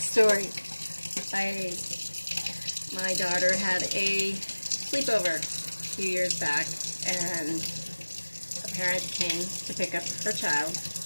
My daughter had a sleepover a few years back, and a parent came to pick up her child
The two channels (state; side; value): inverted; both; correlation -1.00